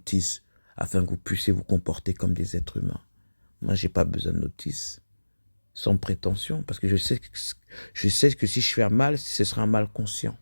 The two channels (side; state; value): both; inverted; correlation -1.00